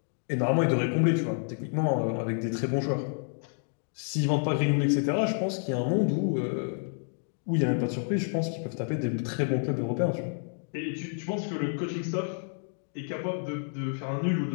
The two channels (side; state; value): right; silent; digital silence